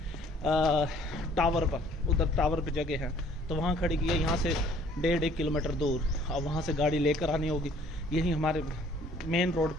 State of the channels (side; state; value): both; normal; correlation 0.57